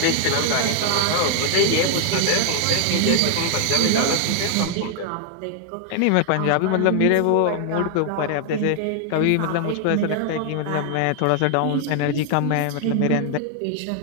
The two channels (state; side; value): different; both; correlation 0.00